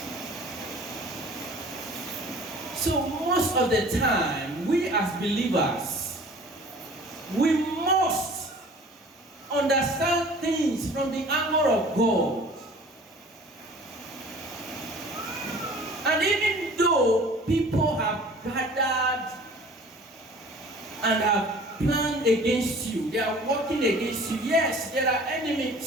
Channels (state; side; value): normal; both; correlation 0.47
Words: So most of the time, we as believers, we must understand things from the angle of God. And even though people have gathered and have planned against you, they are working against you, yes, there are